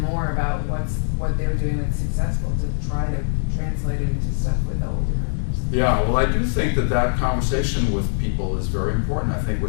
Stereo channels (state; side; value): silent; right; digital silence